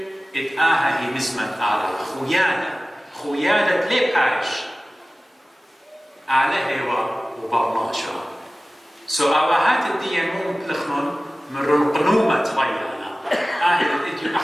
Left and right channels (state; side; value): normal; both; correlation 0.97